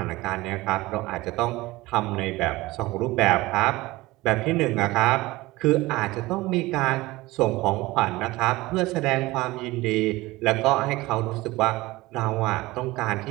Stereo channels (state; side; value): quieter; left; 19.8 dB